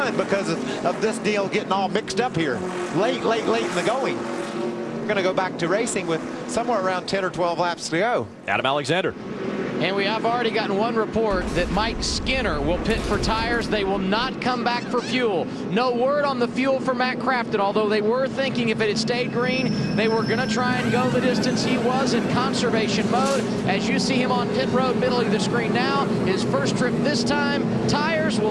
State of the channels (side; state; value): both; identical; correlation 1.00